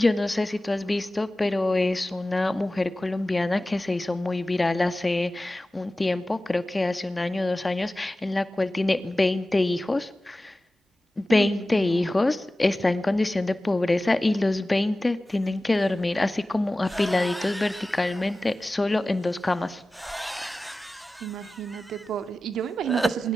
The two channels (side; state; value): both; normal; correlation 0.96